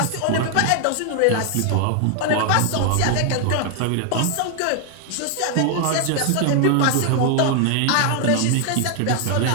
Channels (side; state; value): both; different; correlation 0.00